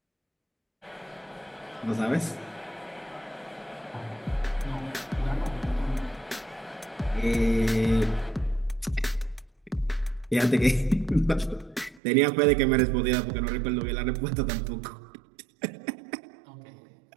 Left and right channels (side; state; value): left; drops out; at 12.0 s